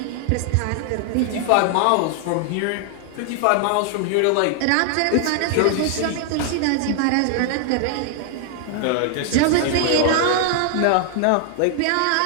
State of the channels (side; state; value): both; different; correlation 0.00